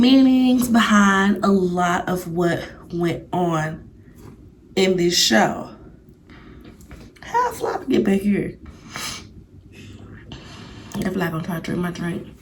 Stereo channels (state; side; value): identical; both; correlation 1.00